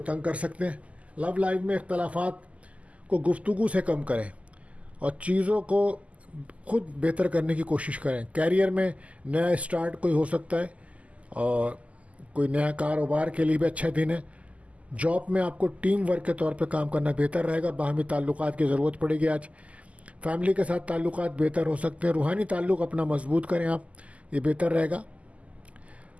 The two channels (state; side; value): late; left; 0.067 ms